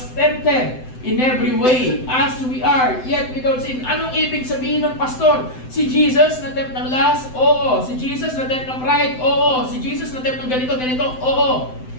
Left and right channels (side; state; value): right; late; 7.8 ms